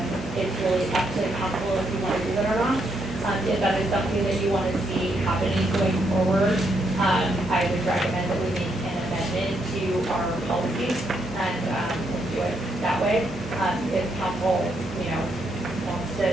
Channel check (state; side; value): noise; right; hum, 15 dB below the sound